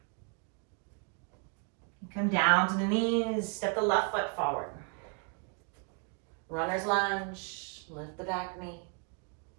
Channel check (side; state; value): left; quieter; 38.8 dB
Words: Come down to the knees, step the left foot forward. Runner's lunge, lift the back knee.